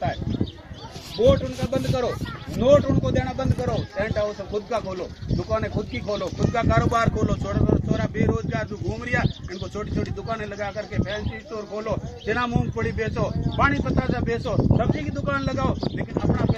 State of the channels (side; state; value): both; identical; correlation 1.00